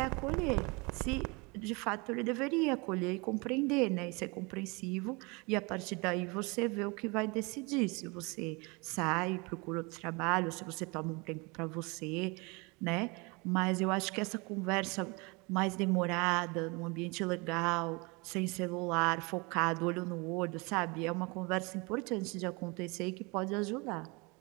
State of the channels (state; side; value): quieter; left; 28.3 dB